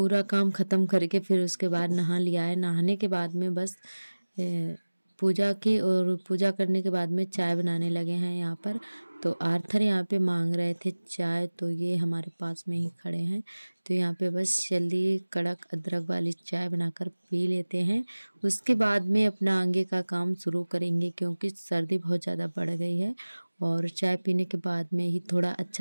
काम ख़त्म करके फिर उसके बाद नहा लिया है। नहाने के बाद में बस पूजा की, और पूजा करने के बाद में चाय बनाने लगे हैं यहाँ पर। तो आर्थर यहाँ पे मांग रहे थे चाय, तो ये हमारे पास में ही खड़े हैं। तो यहाँ पे बस जल्दी कड़क अदरक वाली चाय बनाकर पी लेते हैं। उसके बाद में अपना आगे का काम शुरू करेंगे, क्योंकि सर्दी बहुत ज़्यादा बढ़ गई है और चाय पीने के बाद में ही थोड़ा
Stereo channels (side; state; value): both; inverted; correlation -1.00